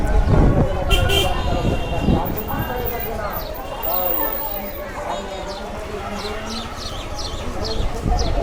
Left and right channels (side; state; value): both; identical; correlation 1.00